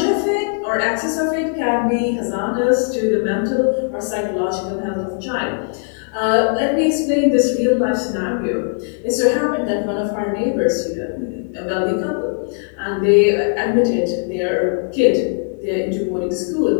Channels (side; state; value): right; silent; 66 dB below the other